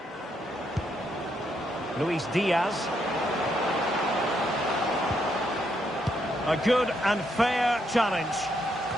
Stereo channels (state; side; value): normal; both; correlation 0.76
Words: Luis Diaz. A good and fair challenge.